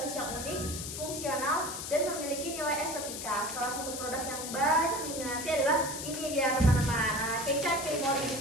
yang unik, fungsional, dan memiliki nilai estetika. Salah satu produk yang banyak diminati adalah ini dia teman-teman, Kecap Kemor, di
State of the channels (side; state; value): left; noise; hiss, 6 dB below the sound